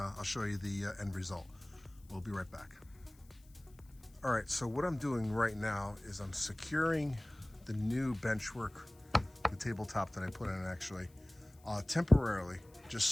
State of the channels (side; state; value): left; noise; hiss, 29 dB below the sound